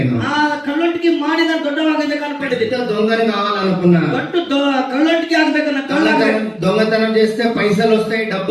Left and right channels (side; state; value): both; identical; correlation 1.00